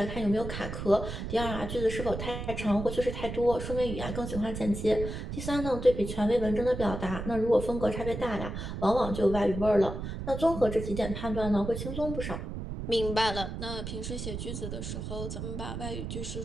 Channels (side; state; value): right; noise; rumble, 6 dB below the sound